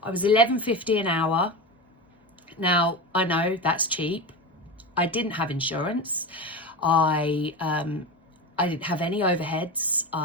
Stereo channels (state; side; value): normal; both; correlation 0.23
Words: I was $11.50 an hour. Now, I know that's cheap. I didn't have insurance. I I didn't have any overheads.